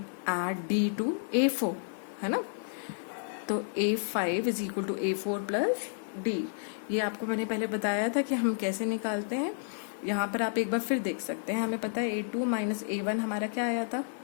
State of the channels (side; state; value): right; silent; digital silence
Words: add d to a4, है ना। तो a5 is equal to a4 plus d। ये आपको मैंने पहले बताया था कि हम कैसे निकालते हैं। यहाँ पर आप एक बार फिर देख सकते हैं। हमें पता है a2 माइनस a1 हमारा क्या आया था,